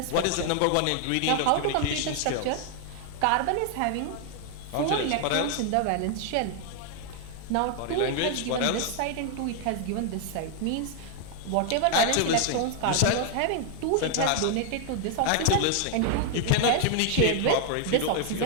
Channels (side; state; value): both; different; correlation 0.00